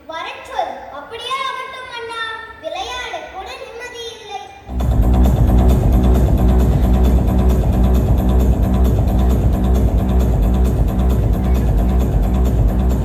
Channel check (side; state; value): both; identical; correlation 1.00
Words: வரச்சொல். அப்படியே ஆகட்டும் அண்ணா. விளையாட கூட நிம்மதி இல்லை.